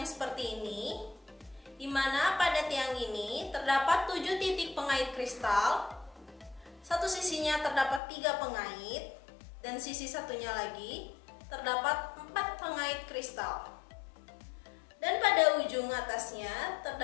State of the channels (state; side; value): drops out; right; at 8.0 s